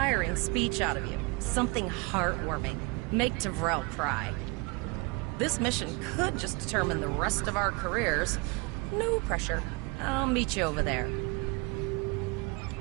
speech out of you. Something heartwarming. Make Devrel cry. This mission could just determine the rest of our careers. No pressure. I'll meet you over there.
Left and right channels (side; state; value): left; quieter; 27.5 dB